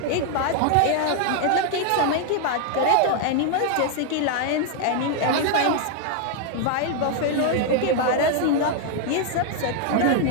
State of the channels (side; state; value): both; different; correlation 0.00